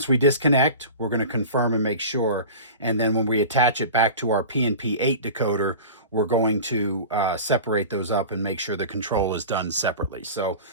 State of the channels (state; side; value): inverted; both; correlation -0.34